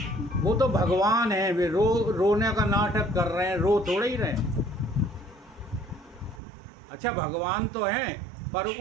वो तो भगवान है, वे रोने का नाटक कर रहे हैं, रो थोड़े ही रहे हैं। अच्छा, भगवान तो हैं, पर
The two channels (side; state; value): left; drops out; at 6.4 s